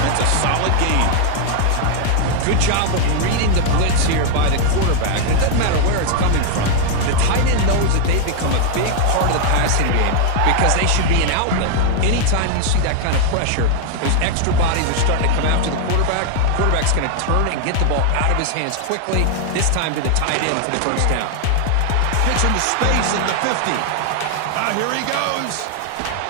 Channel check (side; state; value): both; different; correlation 0.00